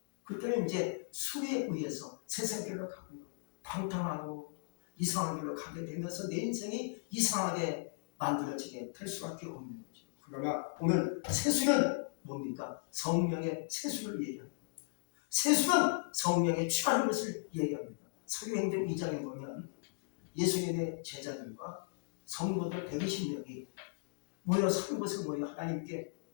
그때는 이제 술에 의해서 세상 길로 가고 방탕하고 이상한 길로 가게 되면서 내 인생이 이상하게 만들어지게 될 수밖에 없는 거죠. 그러나 오늘 세수는 뭡니까? 성령의 세수를 얘기합니다. 세수는 성령에 취하는 것을 얘기합니다. 사도행전 2장에 보면 예수님의 제자들과 성도들 120명이 모여서 한 곳에 모여 하나님께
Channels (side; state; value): right; silent; digital silence